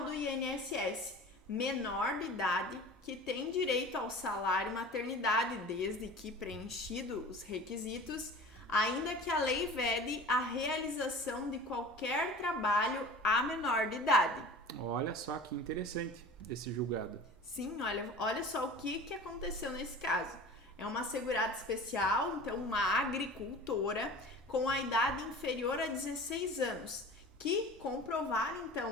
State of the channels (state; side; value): normal; both; correlation 0.39